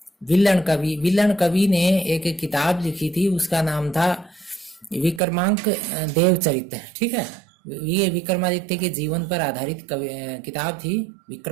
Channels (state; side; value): drops out; left; at 5.2 s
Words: विल्लन कवि ने एक किताब लिखी थी, उसका नाम था विक्रमांक देवचरित, ठीक है। ये विक्रमादित्य के जीवन पर आधारित किताब थी,